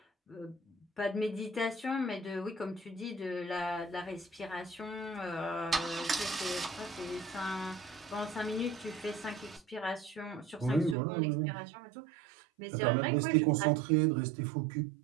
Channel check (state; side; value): drops out; left; at 11.0 s